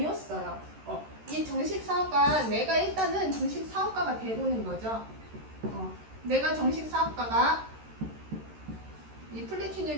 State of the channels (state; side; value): late; left; 13 ms